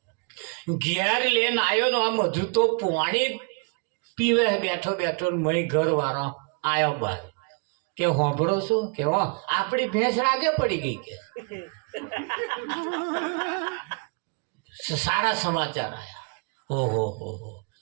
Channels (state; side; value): quieter; left; 35.5 dB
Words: તો આમ હજુ તો પાણી પીવે બેઠો મય ઘર વાળો આવ્યો બહાર કે હોંભળો છો કે આપણી ભેંસ રાગે પડી ગઈ કે સારા સમાચાર આયા. ઓહો